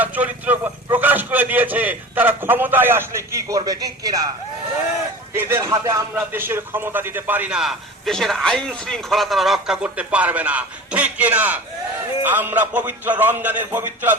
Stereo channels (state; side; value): normal; both; correlation 0.36